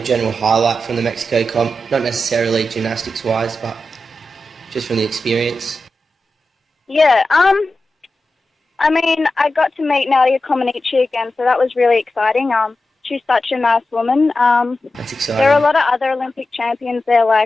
highlight from the Mexico comp? Not necessarily gymnastics-wise, but just from the experience. Yeah, I mean, I got to meet Nadia Comaneci again, so that was really exciting. She's such a nice woman. That's exciting. There are a lot of other Olympic champions there,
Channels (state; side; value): normal; both; correlation 0.92